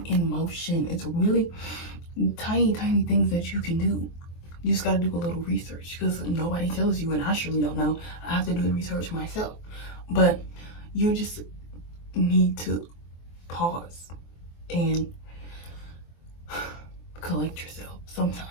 in motion. It's really tiny things that you can do. You just got to do a little research, because nobody tells you, and I surely don't know. I have to do the research myself. But you just need to pause and collect yourself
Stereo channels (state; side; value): late; right; 23 ms